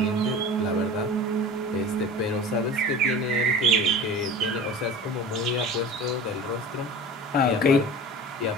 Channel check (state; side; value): normal; both; correlation 0.36